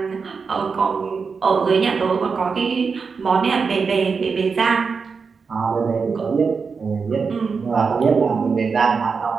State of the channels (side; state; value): left; quieter; 5.2 dB